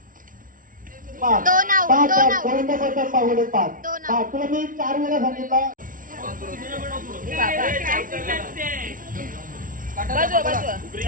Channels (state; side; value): late; left; 0.39 ms